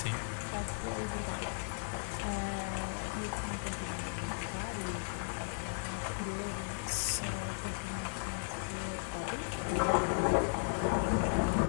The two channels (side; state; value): right; silent; digital silence